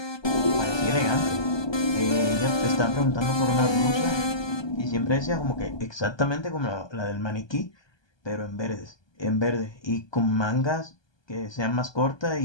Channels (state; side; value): late; right; 1.2 ms